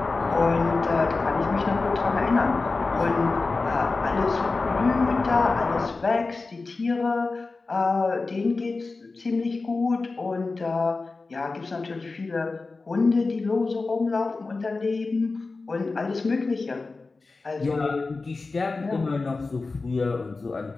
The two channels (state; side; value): quieter; right; 3.8 dB